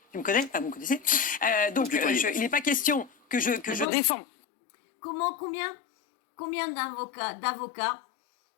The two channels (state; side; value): drops out; right; at 3.9 s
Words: Tu me connais? Vous me connaissez. Donc il n'est pas question que je défends. Combien d'avocats,